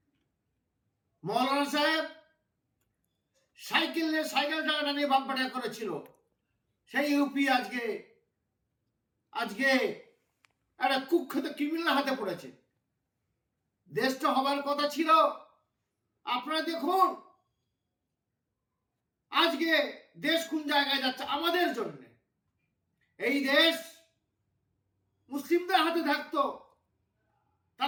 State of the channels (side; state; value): both; identical; correlation 1.00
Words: মৌলানা সাহেব সাইকেল চালানো নিয়ে বাম্পাটা করেছিল, সেই ইউপি আজকে একটা কুখ্যাত ক্রিমিনাল হাতে পড়েছে। দেশটা হবার কথা ছিল। আপনারা দেখুন আজকে দেশ কোন জায়গায় যাচ্ছে আমাদের জন্য। এই দেশ মুসলিমদের হাতে থাকতো,